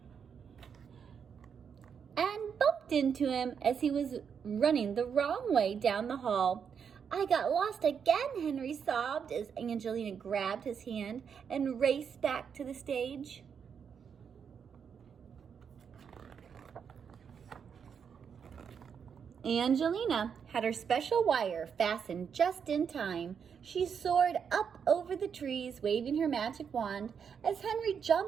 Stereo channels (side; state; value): left; quieter; 7.0 dB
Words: and bumped into him as he was running the wrong way down the hall. "I got lost again," Henry sobbed as Angelina grabbed his hand and raced back to the stage. Angelina had her special wire fastened just in time. She soared up over the trees, waving her magic wand, as Henry